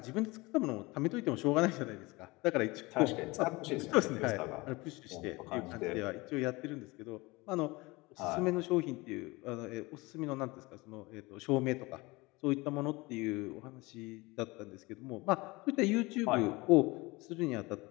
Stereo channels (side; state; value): right; quieter; 23.3 dB